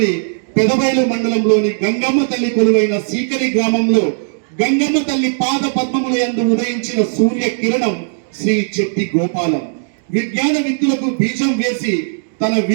పెదబైలు మండలంలోని గంగమ్మ తల్లి కొలువైన సీకరి గ్రామంలో గంగమ్మ తల్లి పాద పద్మముల యందు ఉదయించిన సూర్య కిరణం శ్రీ చెట్టి గోపాలం. విజ్ఞాన విద్యులకు బీజం వేసి తన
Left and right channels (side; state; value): left; silent; digital silence